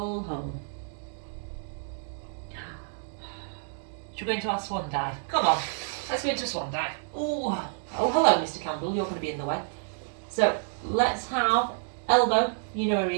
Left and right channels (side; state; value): left; silent; digital silence